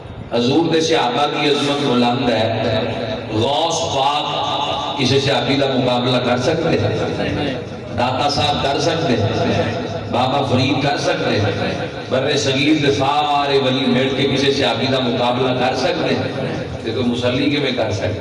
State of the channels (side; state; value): both; identical; correlation 1.00